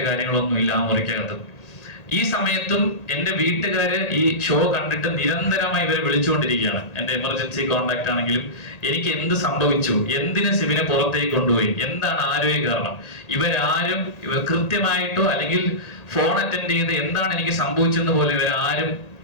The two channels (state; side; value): late; right; 1.8 ms